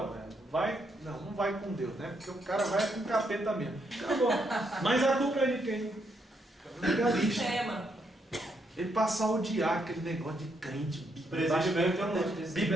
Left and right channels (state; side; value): normal; both; correlation 0.77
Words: velho. Não vai com Deus, né? Porque o cara vai com o capeta mesmo. Acabou. Mas a culpa é de quem? Legalista. Ele passa a odiar aquele negócio de crente,